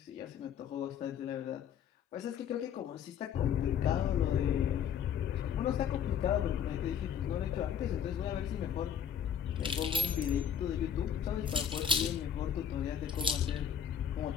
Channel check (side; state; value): right; quieter; 8.4 dB